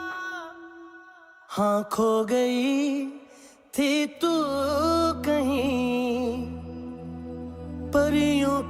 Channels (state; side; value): identical; both; correlation 1.00